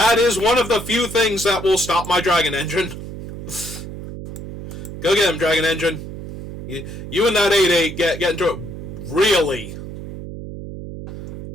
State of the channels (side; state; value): right; noise; hum, 9 dB below the sound